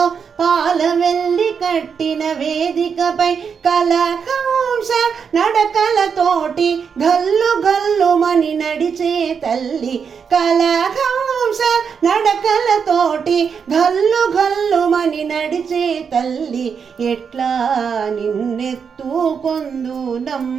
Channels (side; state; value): left; quieter; 6.5 dB